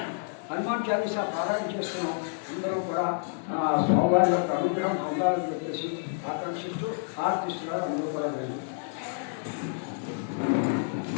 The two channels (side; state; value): right; silent; digital silence